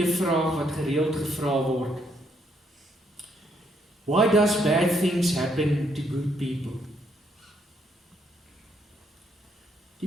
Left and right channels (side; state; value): both; normal; correlation 0.73